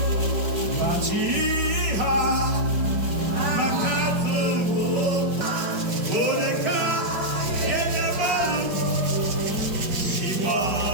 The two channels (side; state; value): left; late; 5.1 ms